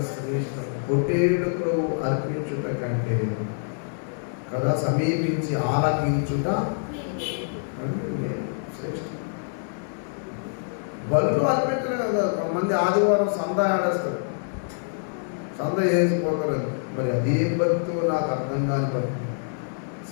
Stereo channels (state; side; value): silent; right; 61 dB below the other